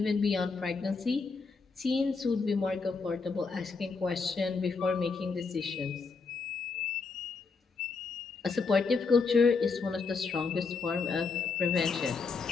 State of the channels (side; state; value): right; quieter; 4.6 dB